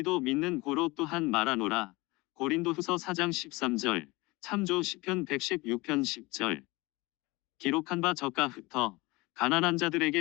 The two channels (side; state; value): right; quieter; 23.4 dB